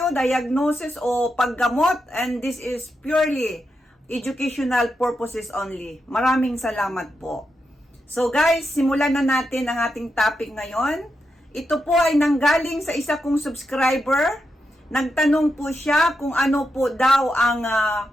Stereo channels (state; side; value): normal; both; correlation 0.86